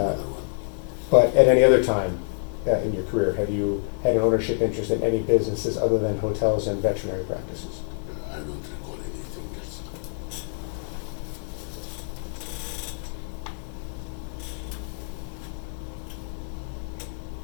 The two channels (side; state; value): right; silent; digital silence